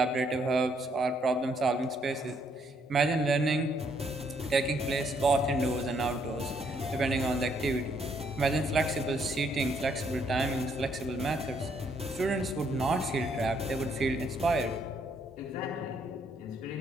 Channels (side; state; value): both; normal; correlation 0.70